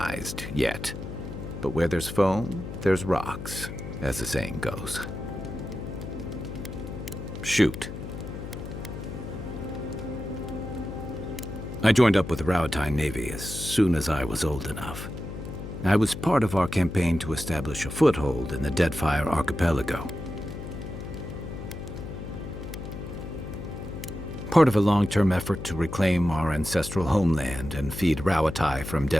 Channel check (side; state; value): left; noise; hum, 9 dB below the sound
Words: yet. But where there's foam, there's rocks, as the saying goes. Shoot. I joined up with the Rauatine Navy as soon as I was old enough. I was part of our campaign to establish a foothold in the Deadfire Archipelago. Part of a long-term effort to reclaim our ancestral homeland and feed Rauatai from